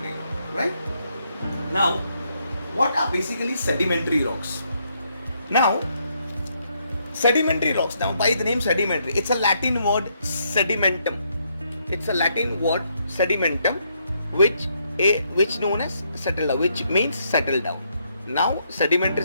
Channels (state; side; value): inverted; both; correlation -0.75